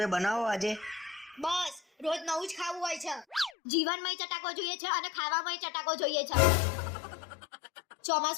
બનાવો આજે. બસ રોજ નવું જ ખાવું હોય છે. જીવનમાંય ચટાકો જોઈએ છે અને ખાવામાંય ચટાકો જોઈએ છે.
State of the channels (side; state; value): right; drops out; at 3.5 s